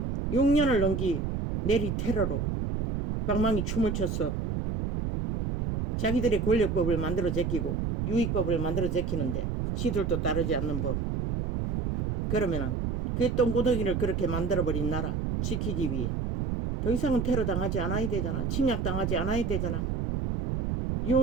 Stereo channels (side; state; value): right; noise; rumble, 1 dB below the sound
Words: 6년을 넘기 내리 테러로 방망이 춤을 췄어. 자기들의 권력법을 만들어 제끼고 유익법을 만들어 제끼는데 시들도 따르지 않는 법. 그러면은 그 똥구덩이를 그렇게 만들어버린 나라 지키기 위해 더 이상은 테러 당하지 않아야 되잖아. 침략 당하지 않아야 되잖아.